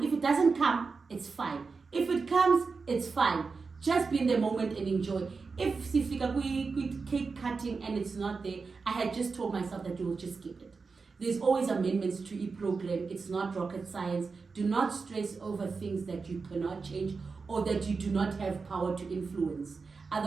If it doesn't come, it's fine. If it comes, it's fine. Just be in the moment and enjoy. If sifika cake cutting and it's not there, I had just told myself that you will just skip it. There's always amendments to each program. It's not rocket science. Do not stress over things that you cannot change or that you do not have power to influence.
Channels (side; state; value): left; quieter; 4.6 dB